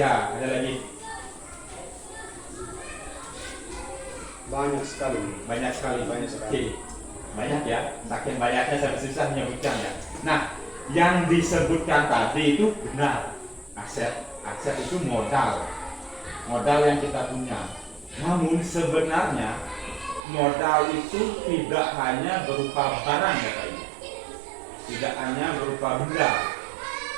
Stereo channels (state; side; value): drops out; left; at 20.2 s